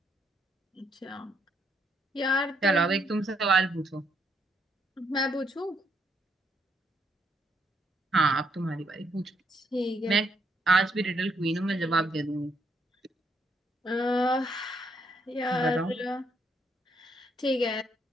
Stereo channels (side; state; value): both; normal; correlation 0.73